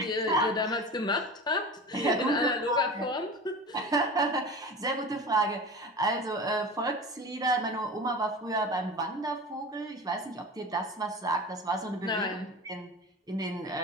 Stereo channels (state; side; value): normal; both; correlation 0.33